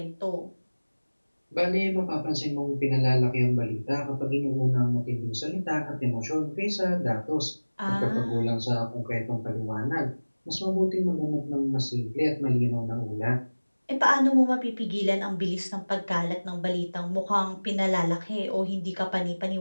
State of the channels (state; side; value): inverted; both; correlation -1.00